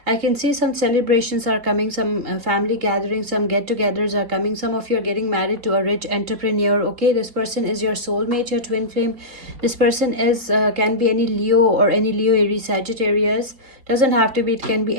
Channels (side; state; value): left; late; 4.4 ms